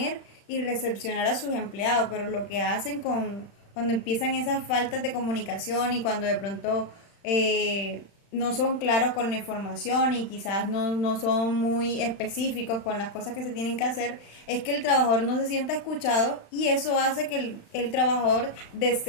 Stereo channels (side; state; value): right; late; 35 ms